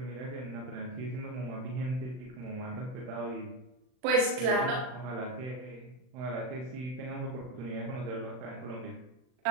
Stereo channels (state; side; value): late; left; 39 ms